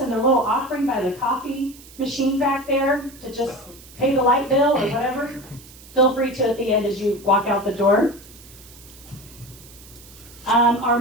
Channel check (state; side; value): noise; right; hiss, 21 dB below the sound